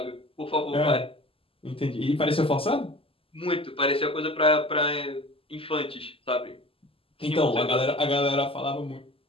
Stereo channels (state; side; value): late; right; 0.26 ms